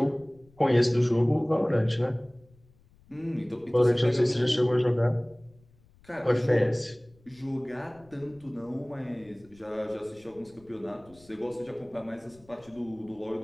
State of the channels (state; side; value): noise; left; rumble, 28 dB below the sound